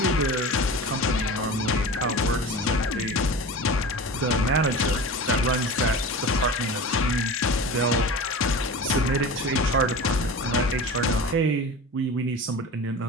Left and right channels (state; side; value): normal; both; correlation 0.33